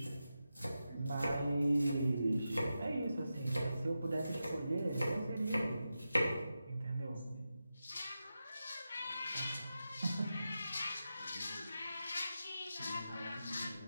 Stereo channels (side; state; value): both; inverted; correlation -0.91